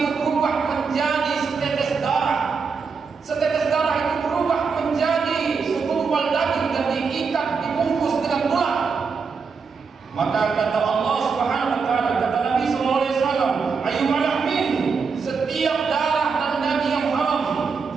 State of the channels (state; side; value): quieter; left; 5.3 dB